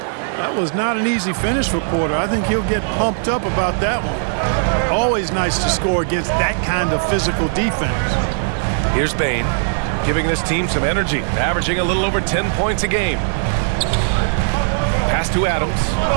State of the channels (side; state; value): left; silent; 67 dB below the other